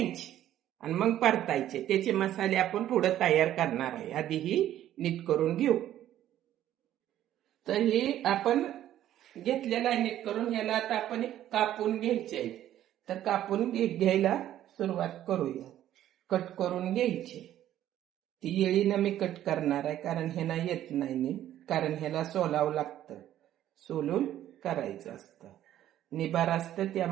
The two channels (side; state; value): left; quieter; 12.2 dB